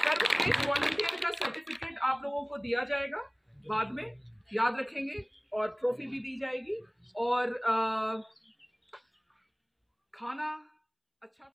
वॉलंटियर का सर्टिफिकेट आप लोगों को दिया जाएगा बाद में, याद रखेंगे। और ट्रॉफी भी दी जाएगी और खाना अच्छा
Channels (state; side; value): identical; both; correlation 1.00